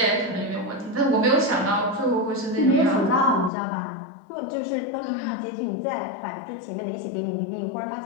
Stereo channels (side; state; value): right; drops out; at 3.5 s